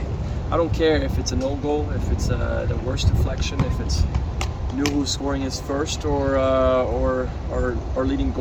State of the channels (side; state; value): both; identical; correlation 1.00